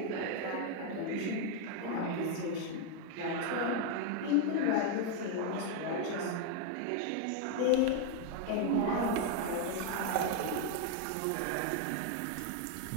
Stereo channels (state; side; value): different; both; correlation 0.00